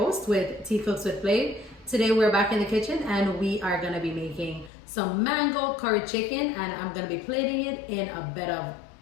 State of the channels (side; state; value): right; drops out; at 4.7 s